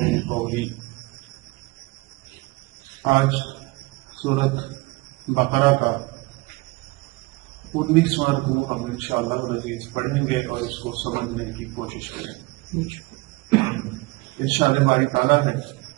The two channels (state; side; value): quieter; left; 23.9 dB